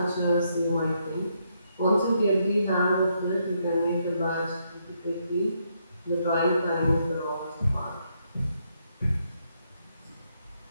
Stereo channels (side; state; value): both; inverted; correlation -0.76